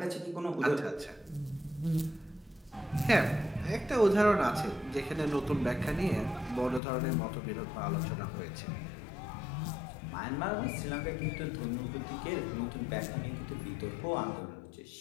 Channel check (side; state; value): right; drops out; at 6.8 s